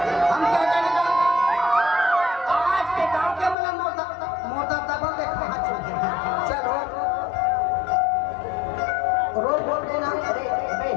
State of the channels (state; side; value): drops out; right; at 3.6 s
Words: हम क्या जाने आज के गांव के मतलब मोटा दबा दे कहां चलते चलो रोज बोल देना अरे